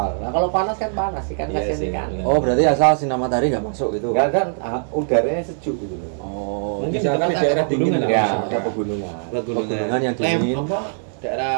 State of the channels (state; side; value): silent; left; digital silence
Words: Nah kalau panas kan panas ikan Iya kasihan sih. ikan. Oh, berarti asal sinar matahari nggak masuk gitu. Nggak kan udaranya sejuk gitu loh. Oh, Mungkin Misalkan di tempat daerah dingin pegunungan lah. Ya, misalkan. ada pegunungan. Pegunungan yang dingin. Apa?